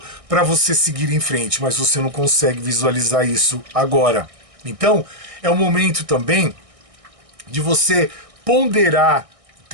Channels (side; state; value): left; late; 1.6 ms